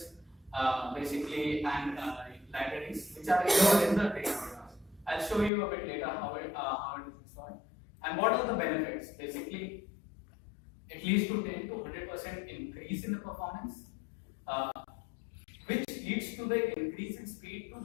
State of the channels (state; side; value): drops out; right; at 5.5 s